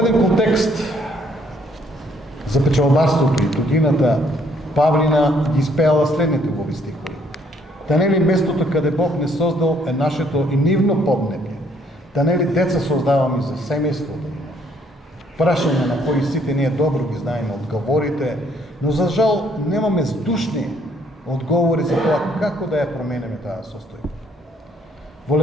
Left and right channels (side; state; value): both; normal; correlation 0.66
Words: контекст за печалбарството и годината Павлина ги испеала следните убави стихови. Та нели местото каде Бог не создал е нашето и нивно поднебје? Та нели деца создаваме за семејството? Прашање на кои сите ние добро ги знаеме одговорите, но за жал немаме здушни одговори за тоа како да ја променеме таа состојба. Во